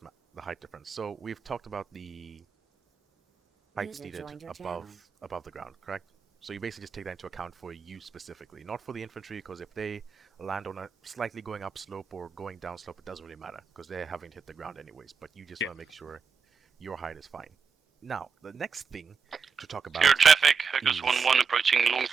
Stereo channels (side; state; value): left; quieter; 5.7 dB